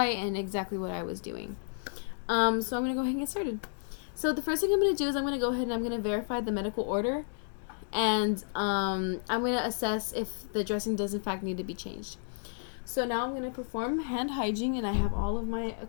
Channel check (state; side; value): silent; right; digital silence